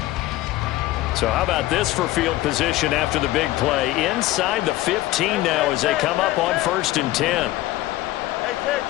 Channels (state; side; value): quieter; right; 16.6 dB